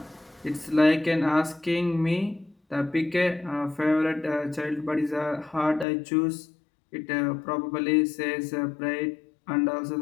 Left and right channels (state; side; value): drops out; right; at 5.9 s